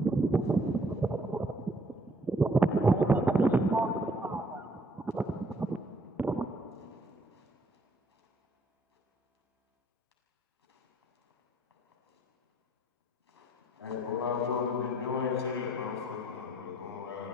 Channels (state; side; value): normal; both; correlation 0.64